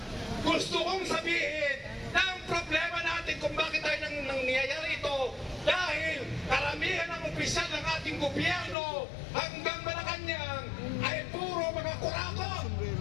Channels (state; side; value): drops out; right; at 8.8 s